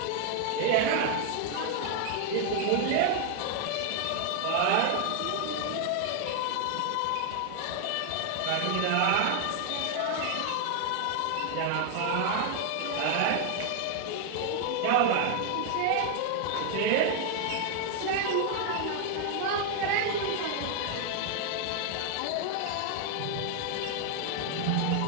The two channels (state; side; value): different; both; correlation 0.00